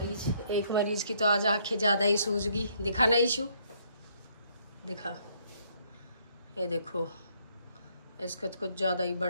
एक मरीज की तो आज आंखें ज़्यादा ही सूज गई। दिखा ना इशू, दिखा, ये देखो इसका तो कुछ ज़्यादा ही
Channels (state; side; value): inverted; both; correlation -0.68